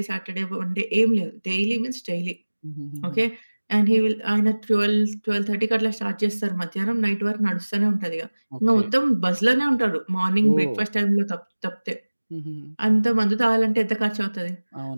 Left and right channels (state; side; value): inverted; both; correlation -1.00